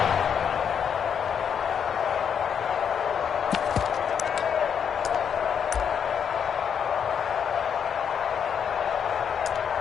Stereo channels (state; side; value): quieter; right; 7.7 dB